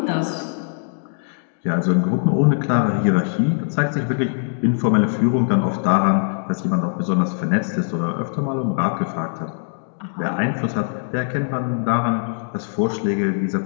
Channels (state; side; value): silent; right; digital silence